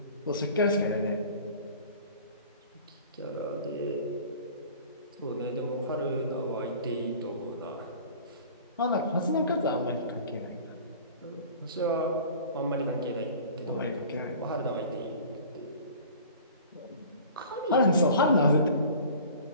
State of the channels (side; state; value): both; inverted; correlation -0.44